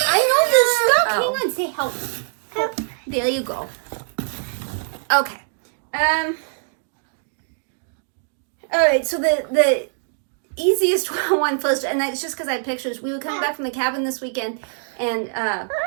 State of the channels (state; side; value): silent; left; digital silence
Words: know this stuff. Hang on, say help. Help. There you go. Okay. Alright, so the easiest one first, and it's just because I had pictures. We were coming back from the cabin this weekend, and